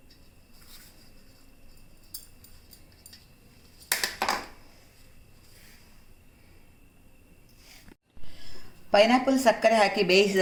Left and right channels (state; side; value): identical; both; correlation 1.00